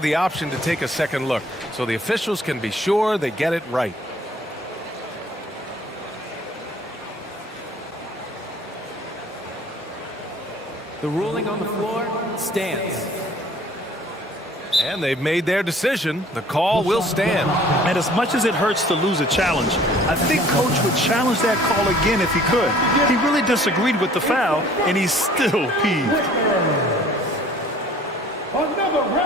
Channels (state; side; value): normal; both; correlation 0.54